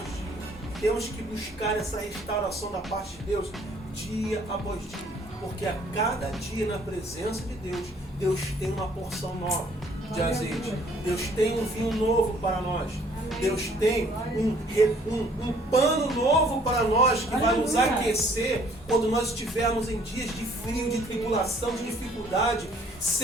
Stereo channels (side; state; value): both; normal; correlation 0.60